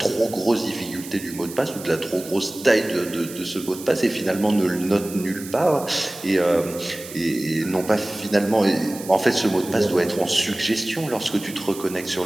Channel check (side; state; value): right; noise; hiss, 14 dB below the sound